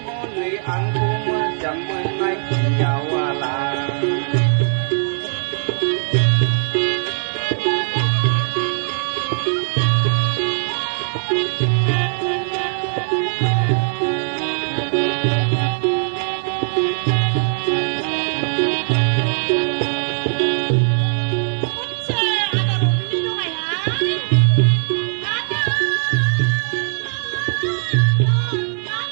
ngon này ăn cú mà chẳng mừng nay tình giàu lại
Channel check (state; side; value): silent; left; 66 dB below the other